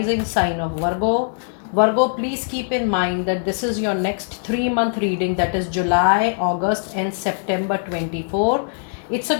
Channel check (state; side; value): silent; right; digital silence